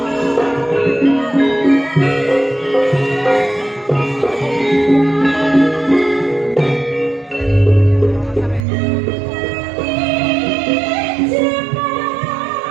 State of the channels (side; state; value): left; drops out; at 8.7 s